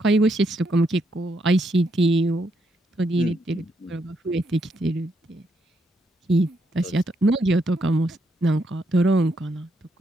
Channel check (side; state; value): both; normal; correlation 0.77